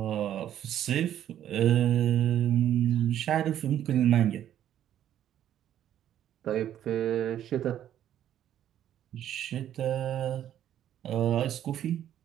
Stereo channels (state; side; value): quieter; left; 11.0 dB